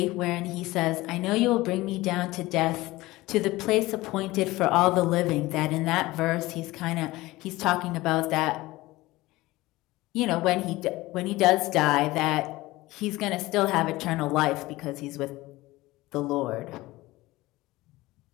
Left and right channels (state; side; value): quieter; right; 19.2 dB